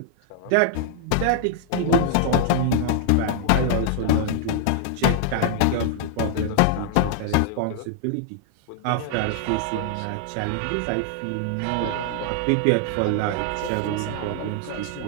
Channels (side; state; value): both; different; correlation 0.00